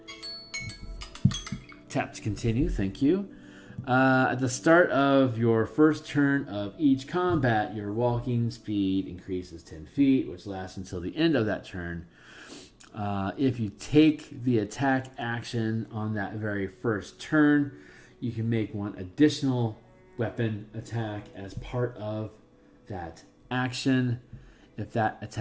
Tap to continue. Thank you. At the start of your first turn of each combat, your walking speed increases 10 feet, which lasts until the end of that turn. If you take the attack action on that very first turn, you can make one additional weapon attack as part of that action. If that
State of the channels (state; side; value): identical; both; correlation 1.00